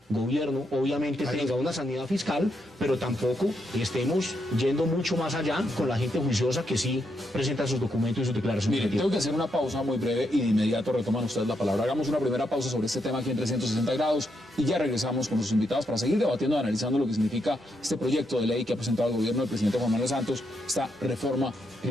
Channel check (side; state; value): both; normal; correlation 0.80